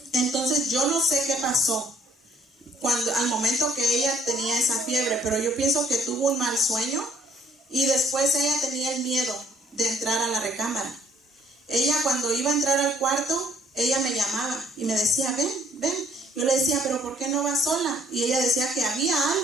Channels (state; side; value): normal; both; correlation 0.61